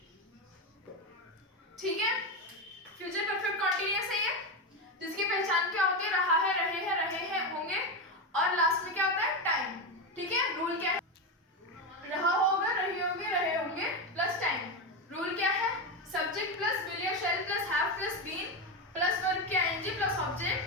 ठीक है, फ्यूचर परफेक्ट कॉन्टिन्यूअस है ये, जिसकी पहचान क्या होती है? रहा है, रहे हैं, होंगे, और लास्ट में क्या होता है? टाइम। ठीक है, रूल क्या है? रहा होगा, रही होगी, रहे होंगे प्लस टाइम। रूल क्या है? सब्जेक्ट प्लस विल या shall plus have plus been plus verb के आईएनजी प्लस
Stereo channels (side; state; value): both; normal; correlation 0.13